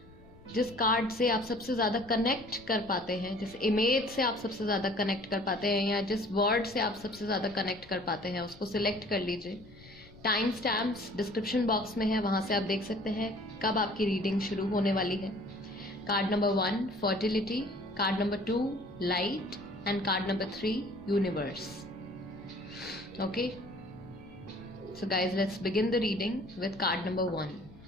जिस कार्ड से आप सबसे ज्यादा कनेक्ट कर पाते हैं, जिस इमेज से आप सबसे ज्यादा कनेक्ट कर पाते हैं या जिस वर्ड से आप सबसे ज्यादा कनेक्ट कर पाते हैं, उसको सिलेक्ट कर लीजिए। टाइम स्टैम्प्स डिस्क्रिप्शन बॉक्स में है, वहां से आप देख सकते हैं कब आपकी रीडिंग शुरू होने वाली है। Card number 1 fertility, card number 2 light and card number 3 universe. Okay, so guys let's begin the reading with card number 1।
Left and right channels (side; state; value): left; noise; rumble, 22 dB below the sound